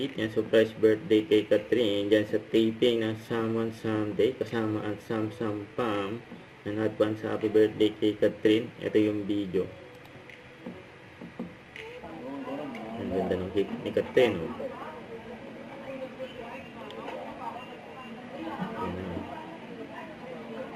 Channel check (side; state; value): both; identical; correlation 1.00